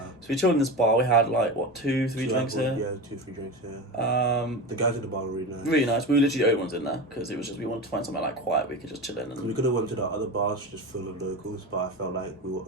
So we chilled in this bar. We had 2, 3 drinks here. Yeah, 2, 3 drinks here. The guys at the bar were really nice. Really nice. We were literally the only ones in there because it was just we wanted to find somewhere quiet we could just chill in. And we could have went to the other bars just full of locals, but I felt like we were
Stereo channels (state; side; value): normal; both; correlation 0.25